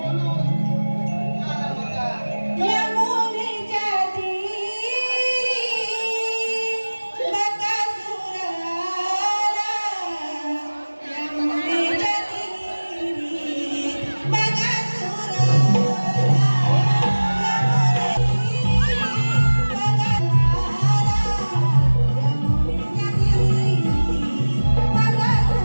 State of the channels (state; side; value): inverted; both; correlation -1.00